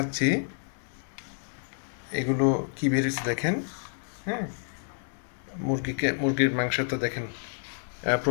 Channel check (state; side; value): silent; right; digital silence